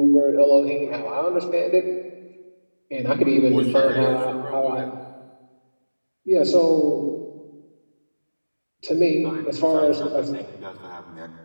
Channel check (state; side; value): inverted; both; correlation -1.00